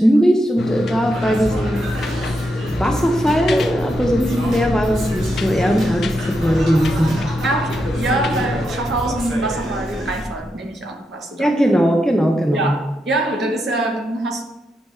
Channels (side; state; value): both; normal; correlation 0.84